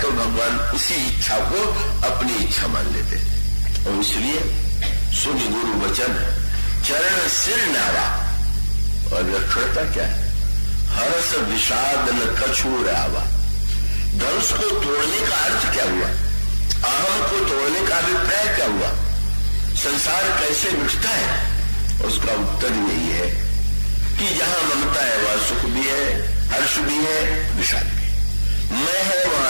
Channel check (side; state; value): both; inverted; correlation -1.00